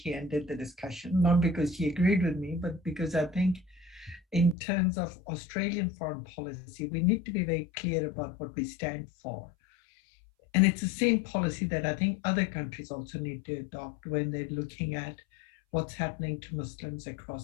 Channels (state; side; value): drops out; right; at 4.5 s